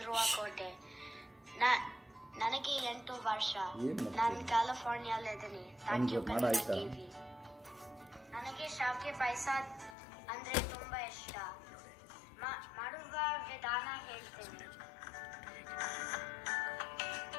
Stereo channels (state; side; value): drops out; right; at 10.0 s